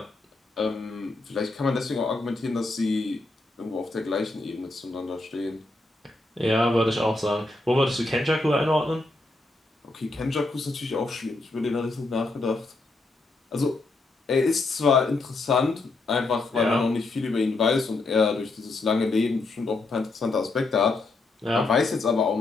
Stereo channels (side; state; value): right; quieter; 3.2 dB